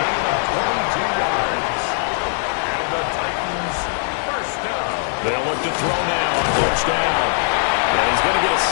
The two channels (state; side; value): silent; right; 58 dB below the other